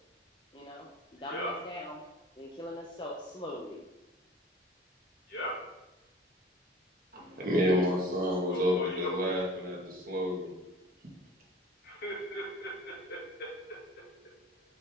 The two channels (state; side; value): normal; both; correlation 0.44